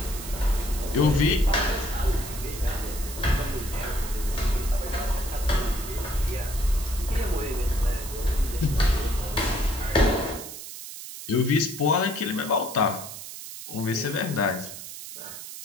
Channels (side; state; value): right; noise; hiss, 11 dB below the sound